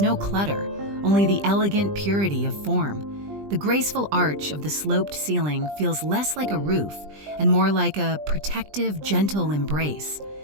clutter, only the elegant purity of form. The graceful arch of the sloped ceiling feels less like a roof and more like a protective, gentle embrace.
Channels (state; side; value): late; left; 20 ms